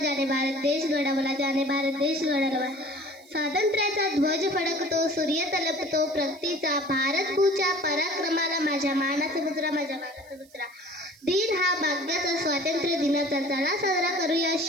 भारत देश घडवला, ज्याने भारत देश घडवला. स्वातंत्र्याचा ध्वज फडकतो, सूर्य तलपतो प्रगतीचा, भारत भूच्या पराक्रमाला माझ्या मानाचा मुजरा, माझ्या मानाचा मुजरा. दिन हा भाग्याचा, स्वातंत्र्य दिनाचा, चला साजरा करूया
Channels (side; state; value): right; noise; hiss, 29 dB below the sound